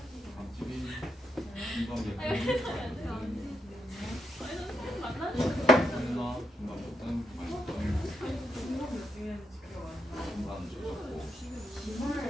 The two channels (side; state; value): both; normal; correlation 0.82